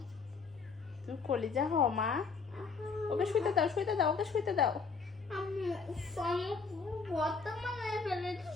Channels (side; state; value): right; quieter; 4.9 dB